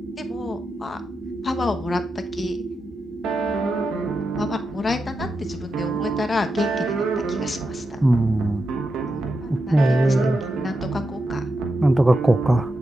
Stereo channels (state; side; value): normal; both; correlation 0.87